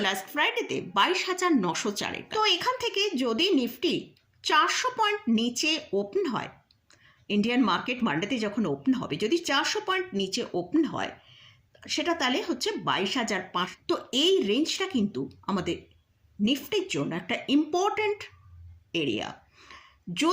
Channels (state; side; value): identical; both; correlation 1.00